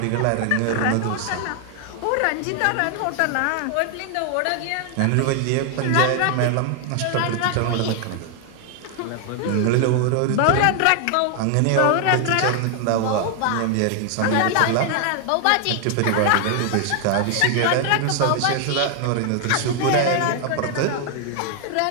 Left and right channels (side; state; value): both; different; correlation 0.00